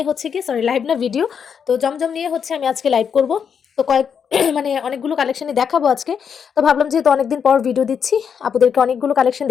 হচ্ছে কি, সরি লাইভ না, ভিডিও। তো জমজম নিয়ে হচ্ছে আমি আজকে লাইভ করব। তো কয়েক মানে অনেকগুলো কালেকশনই দেখাবো আজকে। তো ভাবলাম যেহেতু অনেকদিন পর ভিডিও দিচ্ছি, আপুদেরকে অনেকগুলো কালেকশন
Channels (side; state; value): right; quieter; 7.1 dB